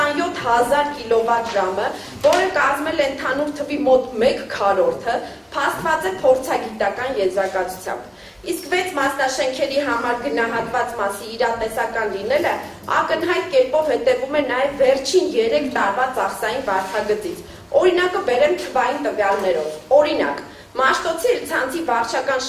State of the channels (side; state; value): both; identical; correlation 1.00